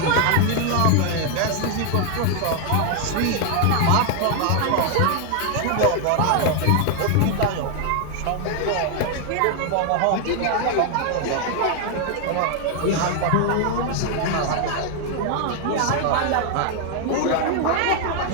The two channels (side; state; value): both; different; correlation 0.00